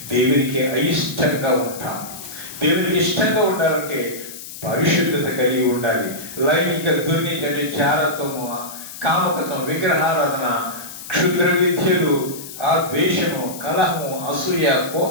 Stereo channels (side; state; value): left; noise; hiss, 13 dB below the sound